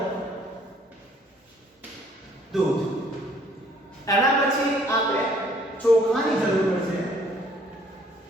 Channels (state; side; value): normal; both; correlation 0.60